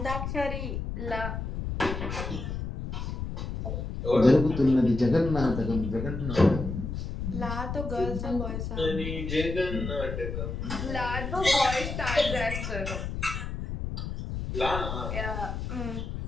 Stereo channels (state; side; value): noise; left; rumble, 4 dB below the sound